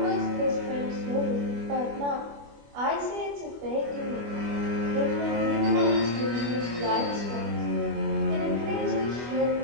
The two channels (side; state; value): left; late; 25 ms